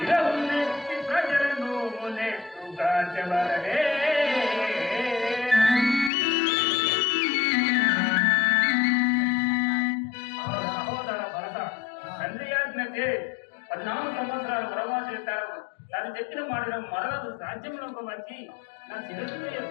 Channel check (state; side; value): drops out; right; at 6.1 s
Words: ప్రజలను నెట్టుగా చెవరనే సహోదర భరత తండ్రి ఆజ్ఞచే 14 సంవత్సరాలు వనవాసం చేస్తారు. తాను చెప్పిన మాటను మరలకు రాజ్యంలోకి వచ్చి నా శిరస్సును